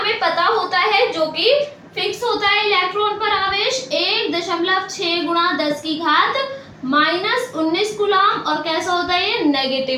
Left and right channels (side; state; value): both; identical; correlation 1.00